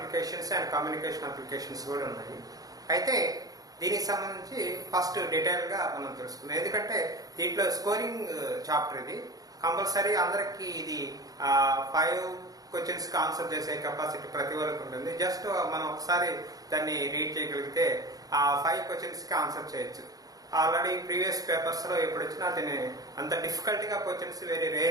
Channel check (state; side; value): late; left; 0.18 ms